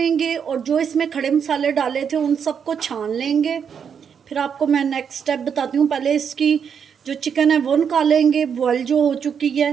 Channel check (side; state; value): left; quieter; 7.3 dB